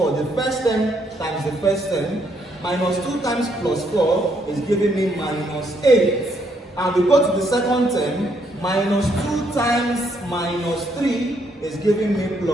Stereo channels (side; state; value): both; normal; correlation 0.72